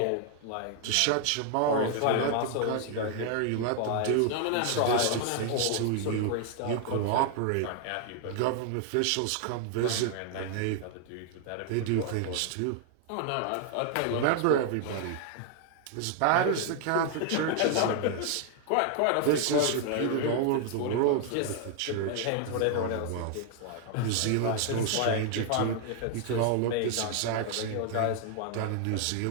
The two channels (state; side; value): different; both; correlation 0.00